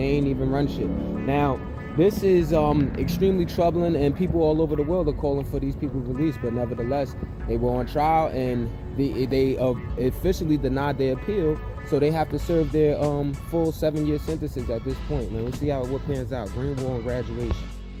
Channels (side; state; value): both; identical; correlation 1.00